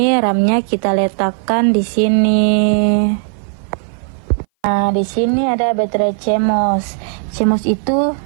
RAM-nya kita letakkan di sini. Nah, di sini ada baterai CMOS. CMOS itu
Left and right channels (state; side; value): silent; left; 59 dB below the other